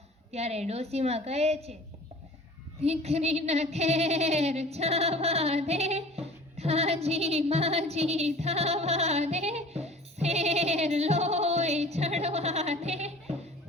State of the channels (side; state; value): both; normal; correlation 0.44